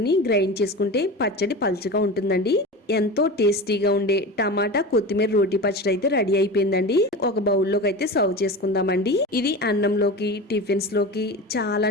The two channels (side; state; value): both; normal; correlation 0.29